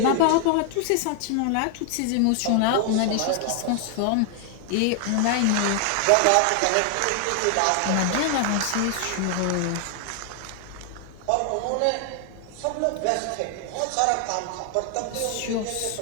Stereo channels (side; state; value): both; different; correlation 0.00